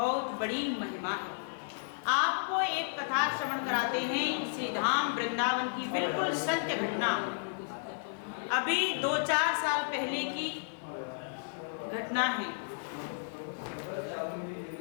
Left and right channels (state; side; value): silent; right; 56 dB below the other